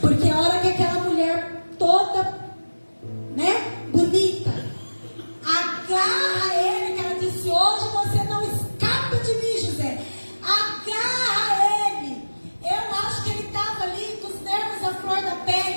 Porque a hora que aquela mulher toda, bonita, agarra ele, que ela disse: hoje você não escapa de mim, José. Agarra ele. Eu acho que ele estava ali com os nervos à flor da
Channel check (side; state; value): both; inverted; correlation -1.00